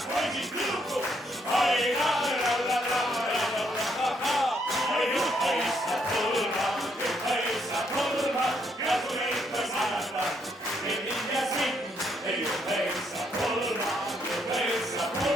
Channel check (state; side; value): normal; both; correlation 0.73